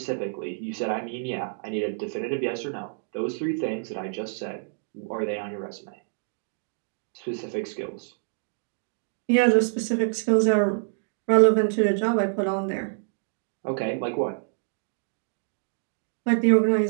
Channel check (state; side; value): silent; left; digital silence